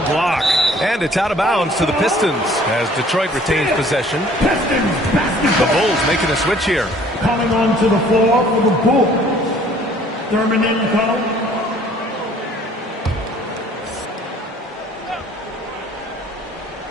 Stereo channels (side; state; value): both; normal; correlation 0.55